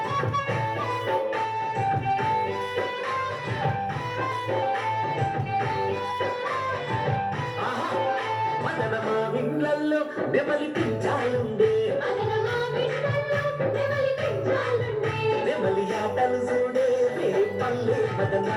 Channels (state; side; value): identical; both; correlation 1.00